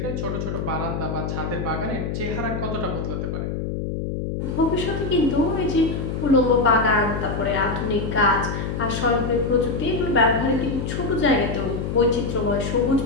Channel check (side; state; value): left; noise; hum, 3 dB below the sound